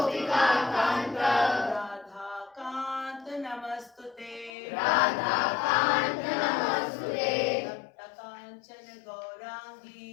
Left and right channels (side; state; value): right; drops out; at 4.5 s